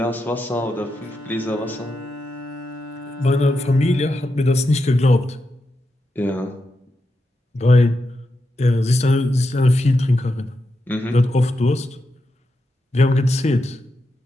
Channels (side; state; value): both; normal; correlation 0.86